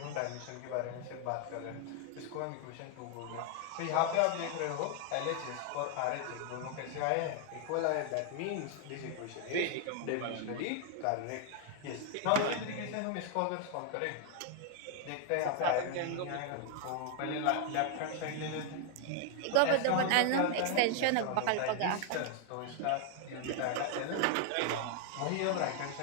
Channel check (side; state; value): both; different; correlation 0.00